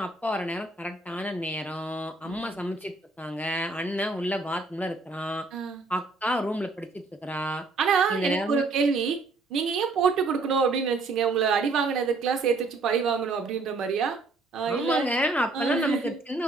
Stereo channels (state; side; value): quieter; left; 3.5 dB